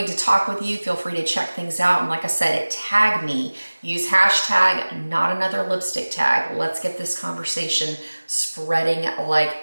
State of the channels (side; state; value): both; inverted; correlation -1.00